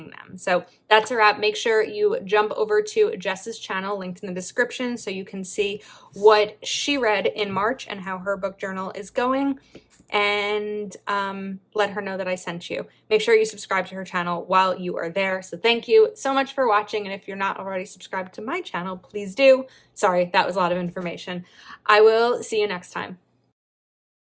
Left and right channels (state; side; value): identical; both; correlation 1.00